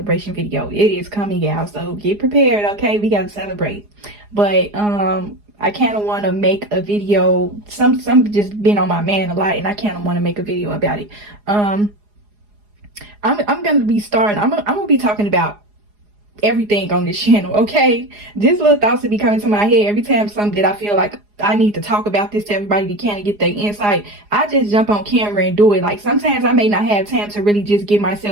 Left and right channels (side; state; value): left; late; 4.8 ms